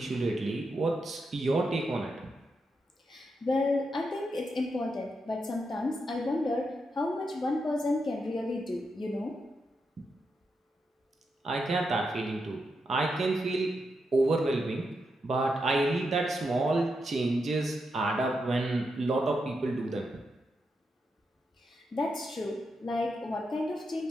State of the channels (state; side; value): normal; both; correlation 0.84